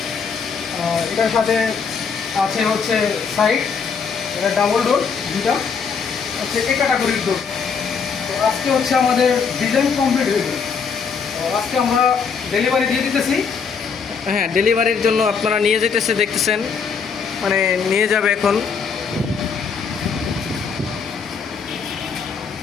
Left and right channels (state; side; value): quieter; right; 6.0 dB